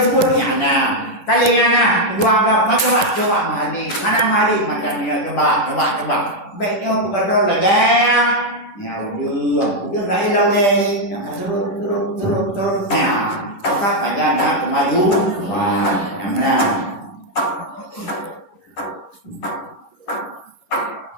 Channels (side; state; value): right; late; 10 ms